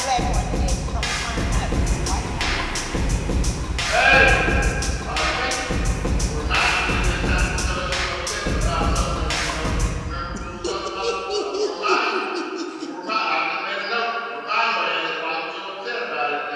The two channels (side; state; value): both; identical; correlation 1.00